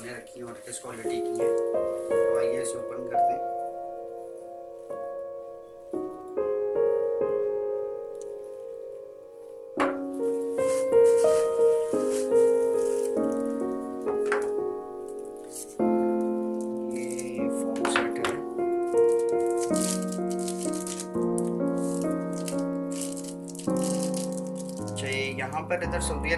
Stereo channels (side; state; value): both; identical; correlation 1.00